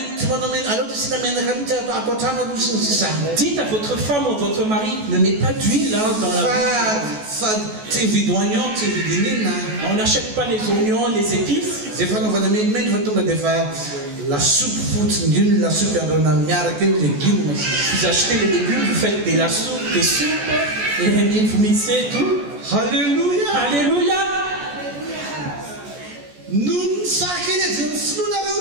Dites à votre femme ou votre mari, ne mets pas d'huile dans la... On n'achète pas les oignons, les épices. Vous achetez les légumes, vous faites des soupes, et vous mixez tout. Alléluia. Alléluia.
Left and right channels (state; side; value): late; left; 14 ms